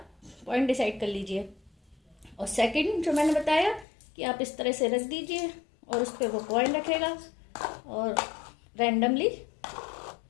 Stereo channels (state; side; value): drops out; right; at 3.9 s